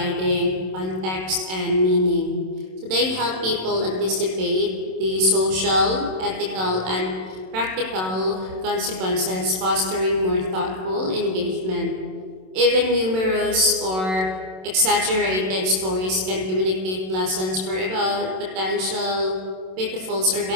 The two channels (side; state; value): left; late; 27 ms